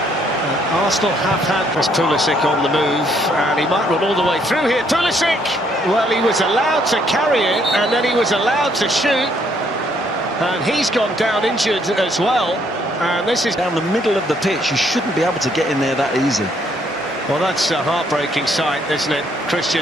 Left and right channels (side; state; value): both; normal; correlation 0.68